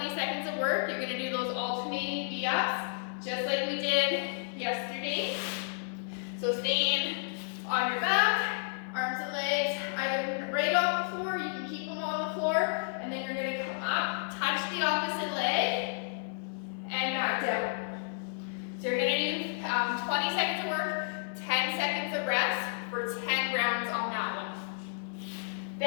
seconds of work, you're gonna do those alternating V-ups, just like we did yesterday. So staying on your back, arms and legs, either right off the floor, you can keep them on the floor, and then you're gonna come up, touch the opposite leg, and back down. So you're gonna do 20 seconds of work, 10 seconds of rest for 10 rounds on that one.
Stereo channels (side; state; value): right; silent; 57 dB below the other